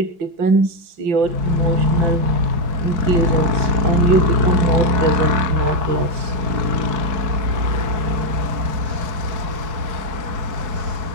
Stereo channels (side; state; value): left; late; 4.7 ms